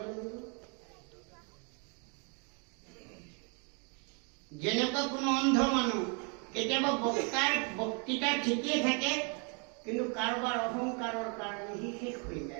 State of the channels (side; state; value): left; quieter; 36.6 dB